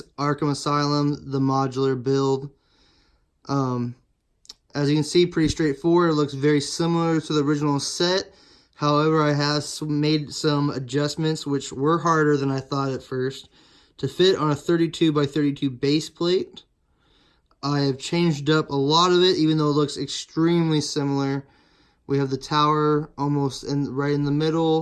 Arkham Asylum, the modular build. As you can see, pretty straightforward. It looks very similar to the original set. However, I have made some adjustments, which were harder than I thought at first, to fit on a 32 by 32 base plate. I have changed up a lot of it, even though it looks extremely similar. We have the tower almost right in the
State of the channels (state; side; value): identical; both; correlation 1.00